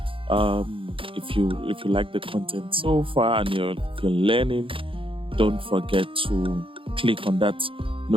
if you like the content so far, and if you're learning. Don't forget to click on that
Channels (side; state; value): left; late; 0.26 ms